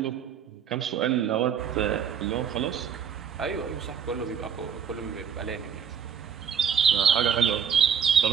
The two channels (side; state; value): left; quieter; 7.6 dB